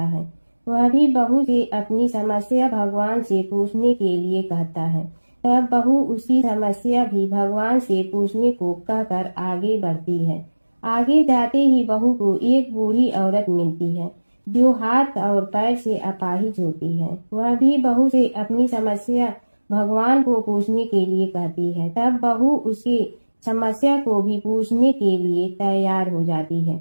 वह भी बहू से अपनी समस्या भगवान से पूछने के लिए कहता है। तब बहू उसकी समस्या भी भगवान से पूछने को कहकर आगे बढ़ती है। आगे जाते ही बहू को एक बूढ़ी औरत मिलती है, जो हाथ और पैर से अपाहिज होती है। वह भी बहू से अपनी समस्या भगवान को पूछने के लिए कहती है। तब बहू उसकी समस्या को भी पूछने के लिए तैयार हो जाती है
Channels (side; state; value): both; inverted; correlation -1.00